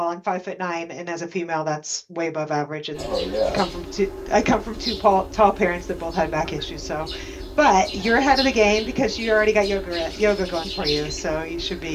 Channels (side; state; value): both; identical; correlation 1.00